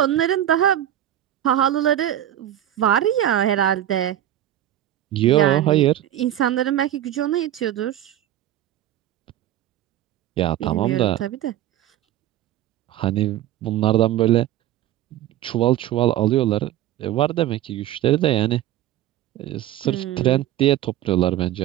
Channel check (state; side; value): quieter; left; 12.5 dB